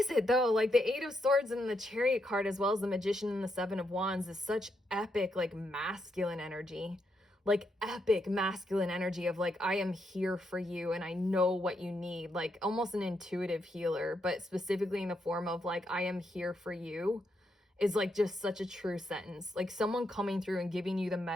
it though? Like the Eight of Swords and the Chariot card, as well as the Magician and the Seven of Wands, is such epic, like masculine energy, like epic masculine energy of like, I am here for you and I know what you need, like almost an intuitive healer, but specifically in the form of like, I am here for you is like just such a true sentence. Like someone coming through and giving you the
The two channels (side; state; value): both; normal; correlation 0.80